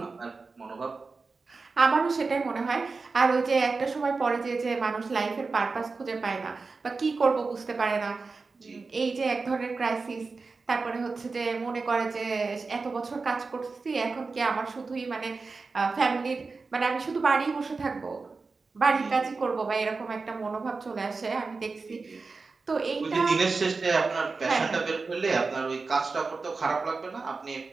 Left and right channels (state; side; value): quieter; left; 4.2 dB